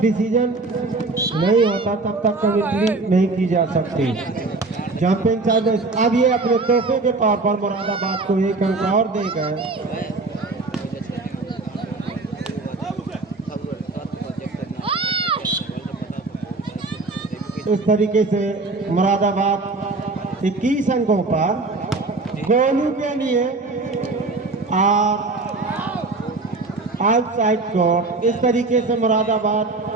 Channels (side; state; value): left; quieter; 3.5 dB